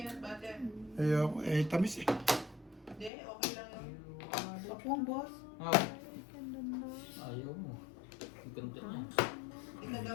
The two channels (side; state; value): right; drops out; at 3.1 s